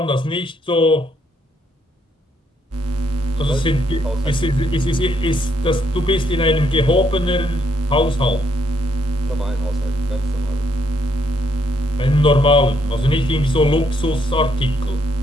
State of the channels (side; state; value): both; normal; correlation 0.73